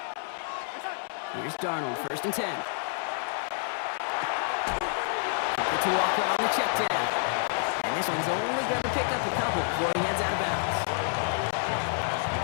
Here's Darnold, 1st and 10. Get to Walker on the check down. And this one's only going to pick up a couple before he heads out of bounds.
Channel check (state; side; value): silent; right; digital silence